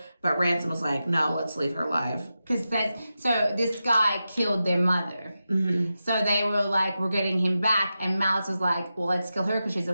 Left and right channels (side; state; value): both; inverted; correlation -0.91